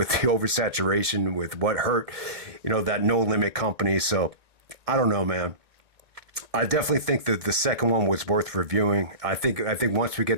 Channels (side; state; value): left; late; 1.9 ms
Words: the oversaturation, with what hurt, that No Limit company. So I don't know, man. I definitely think that the second one was worth reviewing. I think once we